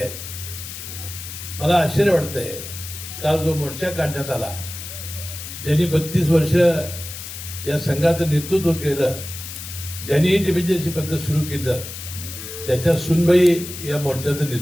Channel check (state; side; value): noise; left; hiss, 10 dB below the sound